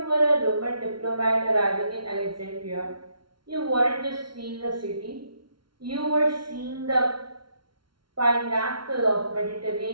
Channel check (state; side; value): late; left; 0.73 ms